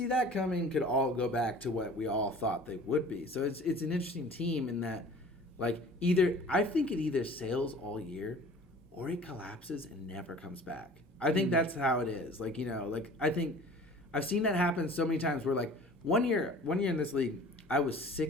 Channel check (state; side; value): normal; both; correlation 0.45